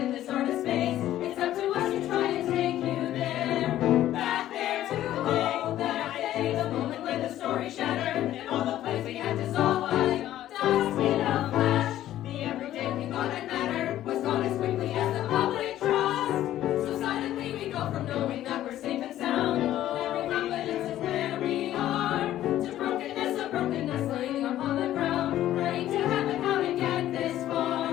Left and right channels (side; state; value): right; quieter; 13.0 dB